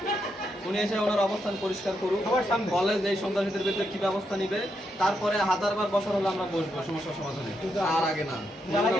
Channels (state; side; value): normal; both; correlation 0.81